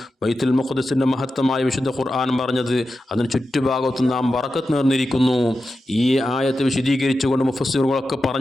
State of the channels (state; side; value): normal; both; correlation 0.91